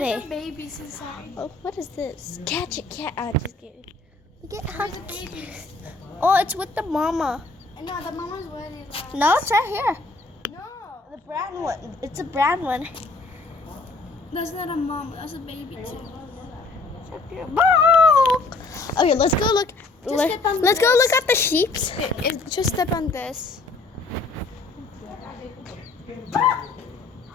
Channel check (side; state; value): right; quieter; 3.6 dB